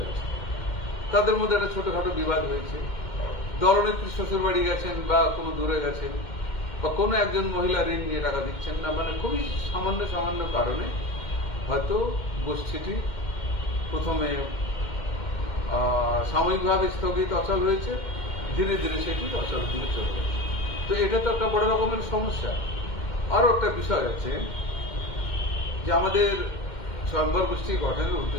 গেছে। তাদের মধ্যে একটা ছোটখাটো বিবাদ হয়েছে, দলনেত্রী শ্বশুর বাড়ি গেছেন বা কোনো দূরে গেছেন, বা কোনো একজন মহিলা ঋণ নিয়ে টাকা দিচ্ছেন না, মানে খুবই সামান্য সামান্য কারণে হয়তো গোষ্ঠীটি প্রথমে সাময়িকভাবে স্থগিত অচল হয়েছে, ধীরে ধীরে সেটি অচল দিকে চলে গেছে। তো এটা তো একটা বড় রকমের সমস্যা। আরো একটা বিষয় আছে যে আমাদের স্বয়ম্বর গোষ্ঠী গঠনের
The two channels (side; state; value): right; late; 2.1 ms